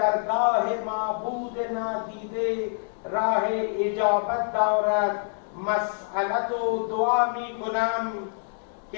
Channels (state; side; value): silent; right; 61 dB below the other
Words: معبود نادیده راه اجابت دارد مسئلت و دعا می کنم